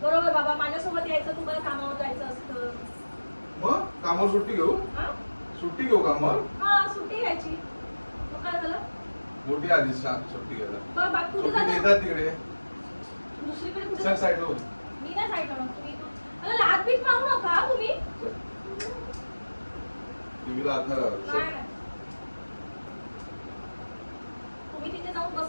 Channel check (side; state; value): both; inverted; correlation -1.00